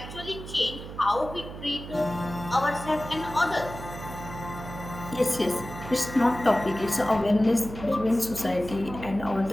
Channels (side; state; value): right; noise; hum, 11 dB below the sound